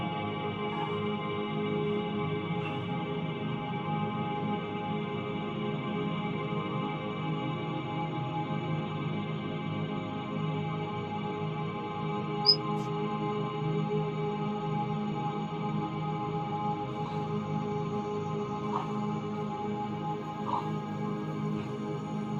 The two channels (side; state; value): both; identical; correlation 1.00